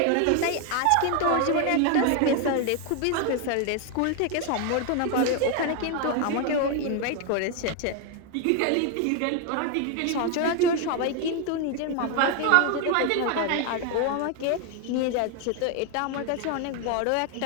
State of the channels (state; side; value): different; both; correlation 0.01